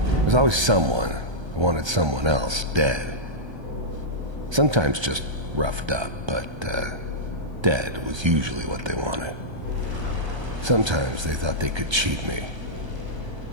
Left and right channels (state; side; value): late; left; 1.3 ms